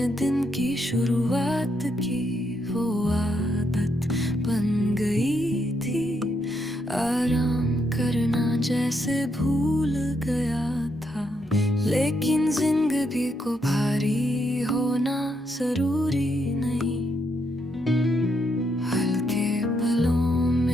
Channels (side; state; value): both; normal; correlation 0.78